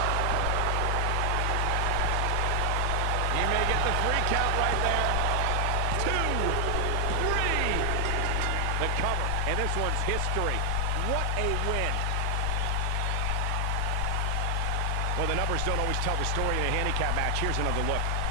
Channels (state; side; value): different; both; correlation 0.00